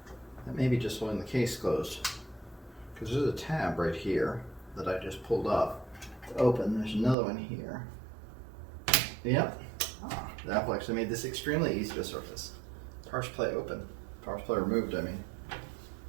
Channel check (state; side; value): drops out; left; at 7.2 s